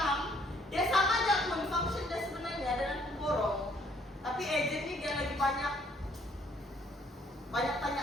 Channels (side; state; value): both; normal; correlation 0.64